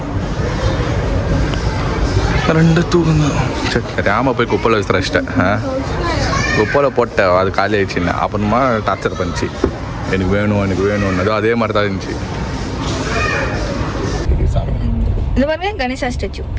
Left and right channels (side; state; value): both; identical; correlation 1.00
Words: ரெண்டு தூக்குங்க. சரி தெரியாமல் போய் குப்பையில் விசிறச்சிட்டேன். குப்பையில் போட்டேன், அது காலி ஆயிடுச்சுன்னு. அப்புறமா டார்ச்சர் பண்ணிச்சு, எனக்கு வேணும்னு. அதே மாதிரி தான் இருந்துச்சு. இது பாருங்க கணேசா ஸ்டாச்சு